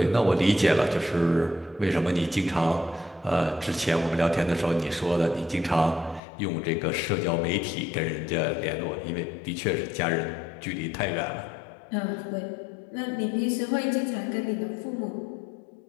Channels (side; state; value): right; drops out; at 6.2 s